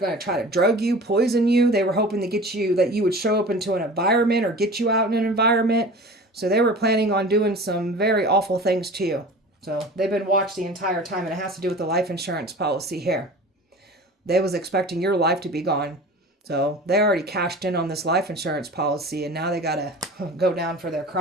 to try to drug you, poison you. They were hoping to get you, that you would show up into an environment or get you out in an environment. So they were planning on doing some very awful things to you. So they've been watched the entire time, and it has to do with the life insurance policy here. They was expecting your life to be gone. So they already cashed in on this life insurance policy, and now they got to go down for their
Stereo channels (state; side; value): normal; both; correlation 0.38